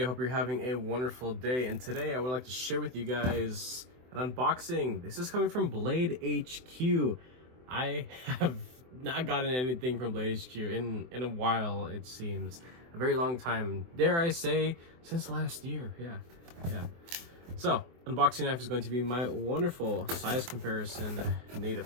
I hope you're having a wonderful day, and today I would like to share with you guys an unboxing. This is coming from Blade HQ. I have not gotten anything from Blade HQ in a while, it seems. A very long time, dare I say, since last year. Yeah. So, unboxing knife is going to be my wonderful size comparison Native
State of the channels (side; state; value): left; late; 24 ms